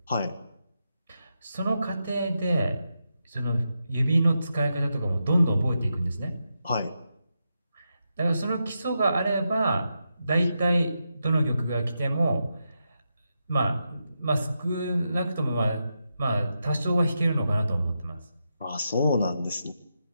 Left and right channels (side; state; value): both; inverted; correlation -0.86